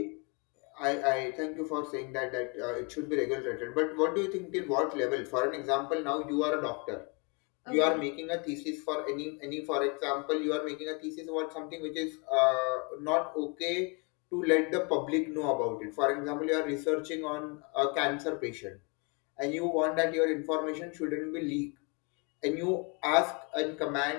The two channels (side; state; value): right; quieter; 32.3 dB